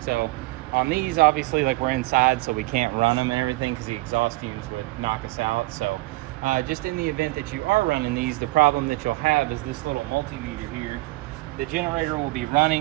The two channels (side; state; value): left; quieter; 20.9 dB